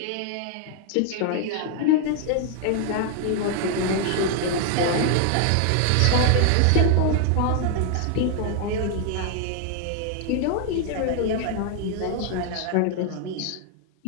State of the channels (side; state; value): both; different; correlation 0.00